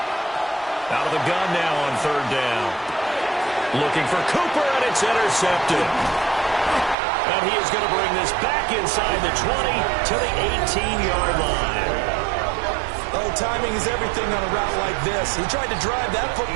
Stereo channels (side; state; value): left; drops out; at 7.0 s